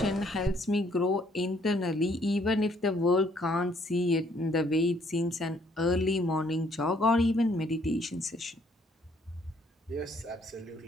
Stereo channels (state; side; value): normal; both; correlation 0.66